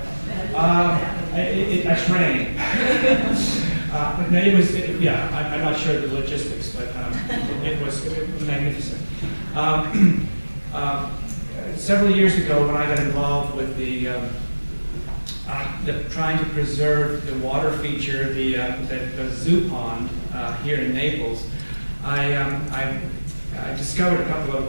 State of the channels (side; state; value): both; inverted; correlation -1.00